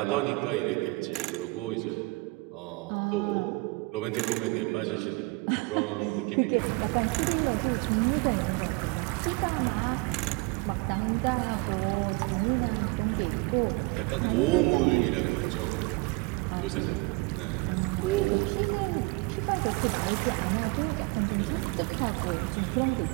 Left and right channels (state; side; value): quieter; left; 25.8 dB